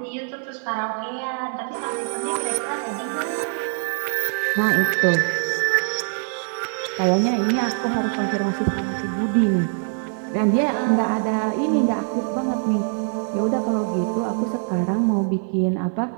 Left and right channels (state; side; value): silent; left; 63 dB below the other